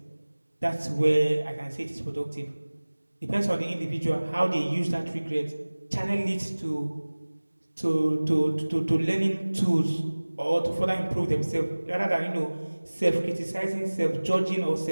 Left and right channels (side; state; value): both; inverted; correlation -1.00